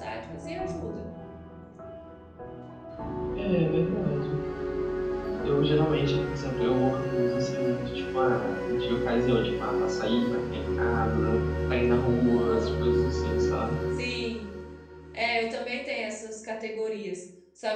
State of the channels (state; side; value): identical; both; correlation 1.00